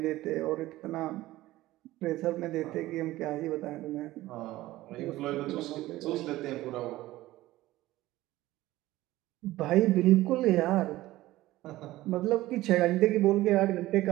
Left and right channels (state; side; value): quieter; left; 16.7 dB